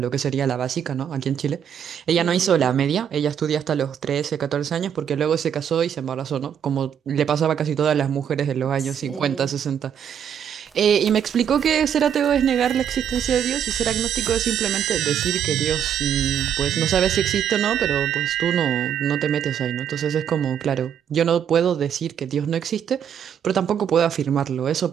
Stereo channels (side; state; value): left; quieter; 8.7 dB